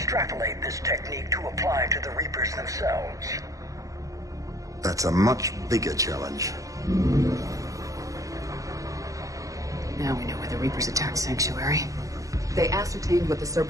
this technique to apply to the Reapers themselves? That's a much bigger challenge. Now we know why the Reapers attacked Sanctuary. They ascertained what the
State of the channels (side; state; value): left; late; 0.16 ms